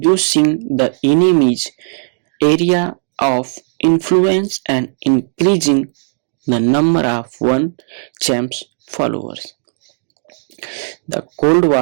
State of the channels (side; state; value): left; silent; digital silence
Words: the enemy's area of influence and increasing the number of one champ's followers. The Cold